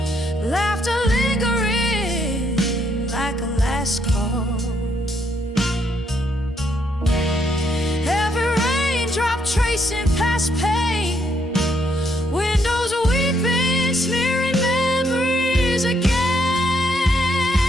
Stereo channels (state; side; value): normal; both; correlation 0.73